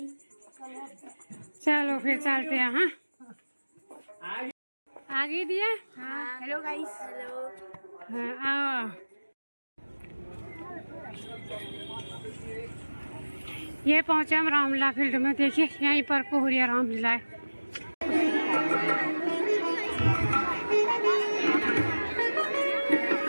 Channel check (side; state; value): both; inverted; correlation -1.00